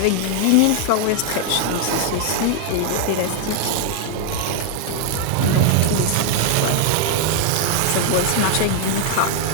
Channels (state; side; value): different; both; correlation 0.00